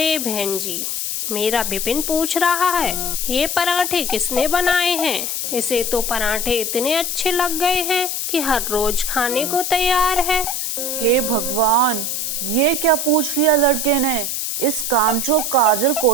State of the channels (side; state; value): left; noise; hiss, 2 dB below the sound